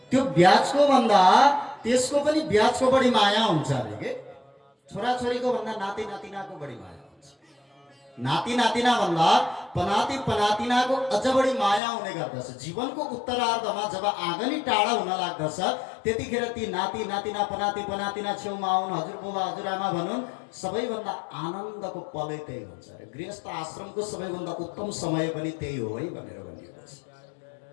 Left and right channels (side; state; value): right; drops out; at 11.8 s